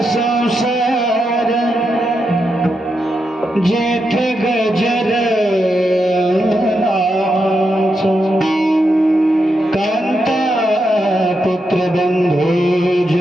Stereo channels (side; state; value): both; normal; correlation 0.84